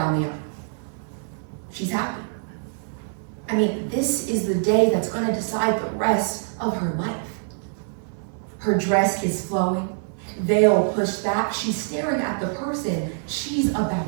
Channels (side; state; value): left; silent; 59 dB below the other